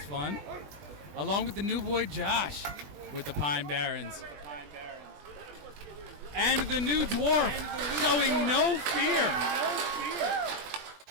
fun. Along with the new boy Josh with the Pine Barrens. And the new dwarf showing no fear.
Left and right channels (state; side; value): late; left; 20 ms